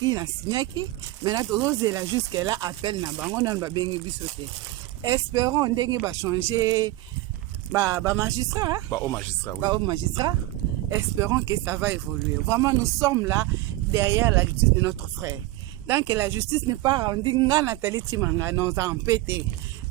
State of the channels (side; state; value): left; quieter; 17.8 dB